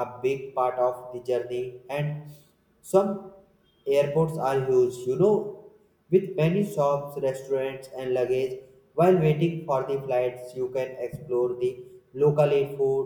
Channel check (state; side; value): identical; both; correlation 1.00